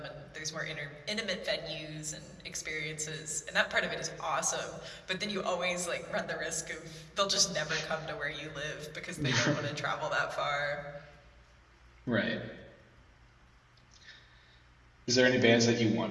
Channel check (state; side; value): identical; both; correlation 1.00